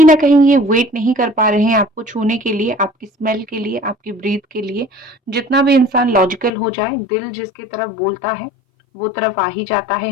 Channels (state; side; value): drops out; right; at 6.5 s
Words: ना कहीं ये वेट नहीं कर पा रहे हैं आपको छूने के लिए, आपकी स्मेल के लिए, आपकी ब्रीथ के लिए। जितना भी इंसान लॉजिकल हो जाए, दिल जिसके तरफ बोलता है वो तरफ आ ही जाता है